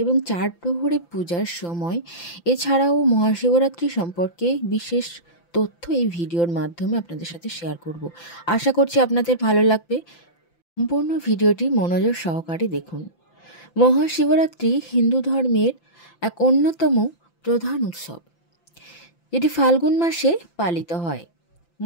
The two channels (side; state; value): right; late; 5.9 ms